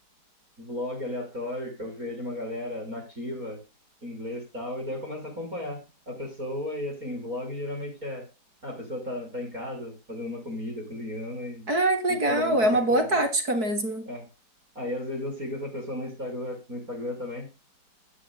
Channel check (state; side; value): late; left; 4.6 ms